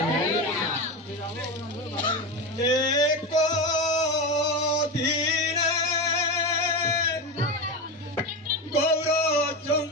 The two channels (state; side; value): normal; both; correlation 0.19